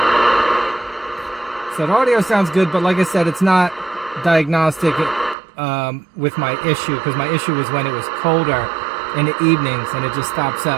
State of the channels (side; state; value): left; drops out; at 5.4 s